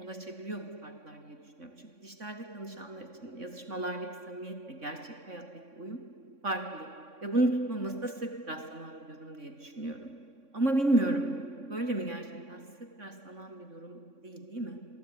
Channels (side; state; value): left; late; 3.6 ms